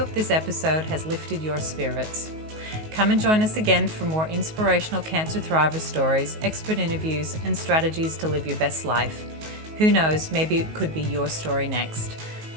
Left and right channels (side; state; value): left; late; 19 ms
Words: this episode has lifted your spirits. Come and join us again for more inspirational cancer thriver stories, expert interviews, and strategies to live your best life. Who knows, maybe it could be your story next.